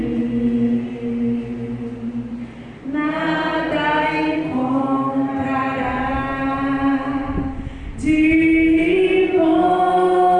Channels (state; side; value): identical; both; correlation 1.00